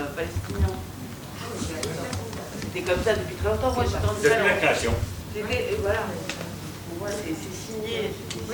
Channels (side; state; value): both; identical; correlation 1.00